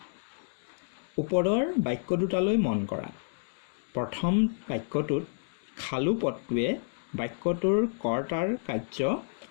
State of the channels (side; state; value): right; silent; digital silence